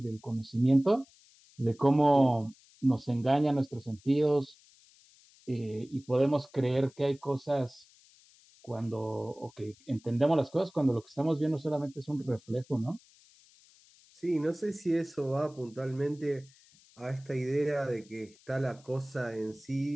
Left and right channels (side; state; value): left; noise; hiss, 28 dB below the sound